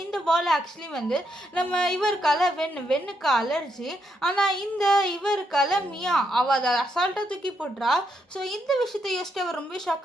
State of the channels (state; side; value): normal; both; correlation 0.78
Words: இந்த பால் ஆக்சுவலி வந்து நம்ம இவருக்கால வெண்ணுக்கு அலர்ஜி. ஆனால் இந்த இவருக்கால மியா அவள் அதை அசால்ட்டாக தூக்கி போட்டுறா. ஸோ இந்த விஷயத்தை யோசிச்சு அவர் ரொம்ப